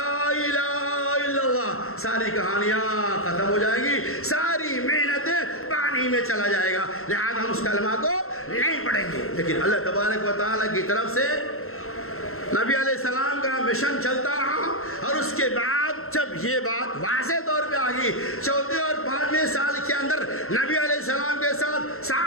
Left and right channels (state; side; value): late; right; 0.62 ms